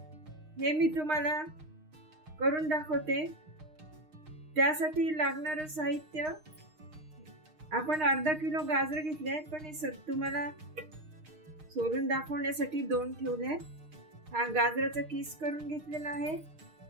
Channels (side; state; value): left; late; 6.5 ms